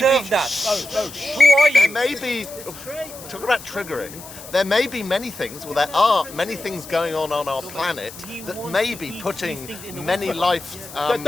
that? Who are There you? may be, talk about triggering, there may be many things, well there are many things going on our planet that may be putting many life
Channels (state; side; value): noise; left; hiss, 15 dB below the sound